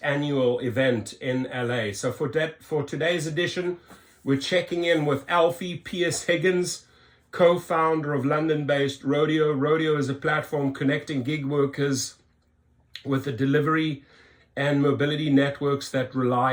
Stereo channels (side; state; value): both; identical; correlation 1.00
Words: annual event in LA. So for today's edition, we're checking in with Alfie Pierce-Higgins, co-founder of London-based RODEO. RODEO is a platform connecting gig workers with the delivery and mobility networks that